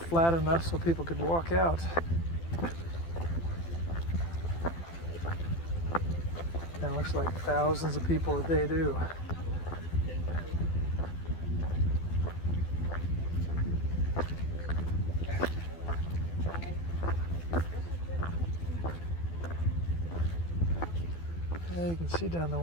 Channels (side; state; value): right; late; 12 ms